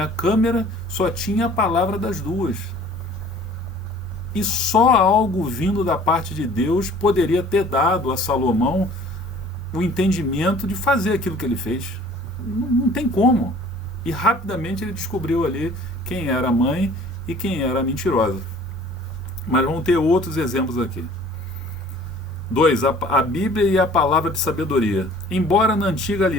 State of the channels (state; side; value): normal; both; correlation 0.50